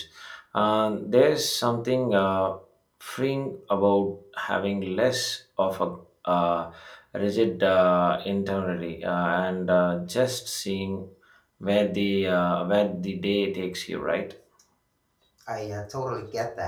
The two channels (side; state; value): both; identical; correlation 1.00